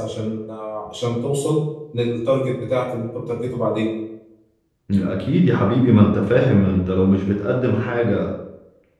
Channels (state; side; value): identical; both; correlation 1.00